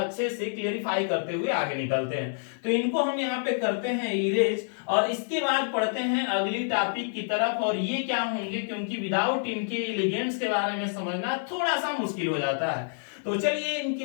से क्लियरिफाई करते हुए आगे निकलते हैं। तो इनको हम यहाँ पे करते हैं इरेज और इसके बाद पढ़ते हैं अगली टॉपिक की तरफ, और ये क्या होंगे क्योंकि विदाउट इनके लिगेंड्स के बारे में समझना थोड़ा सा मुश्किल हो जाता है। तो चलिए इनकी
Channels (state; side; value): silent; right; digital silence